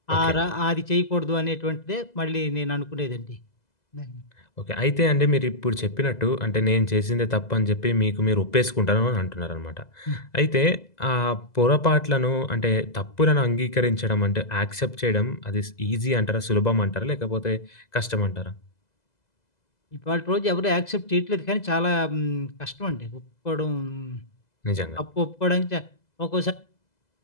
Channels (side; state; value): right; late; 2.0 ms